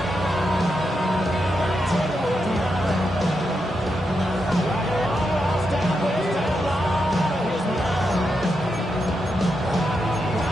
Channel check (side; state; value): both; normal; correlation 0.85